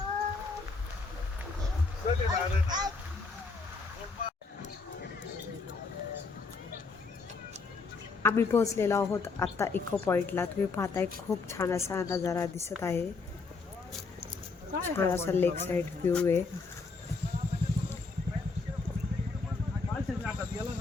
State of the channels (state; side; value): quieter; right; 4.3 dB